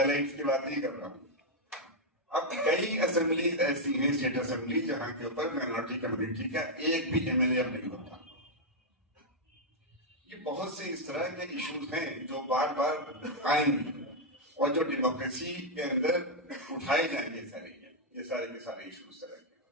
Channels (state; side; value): normal; both; correlation -0.02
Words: की बात नहीं कर रहा हूँ। अब कई असेंबलीज ऐसी हैं, स्टेट असेंबली, जहां के ऊपर माइनॉरिटी कम्युनिटी का एक भी एमएलए नहीं होता। ये बहुत से इस तरह के इश्यूज हैं जो बार बार आएंगे और जो डेमोक्रेसी के अंदर उठाए जाएंगे, ये सारे के सारे इश्यूज तरह के।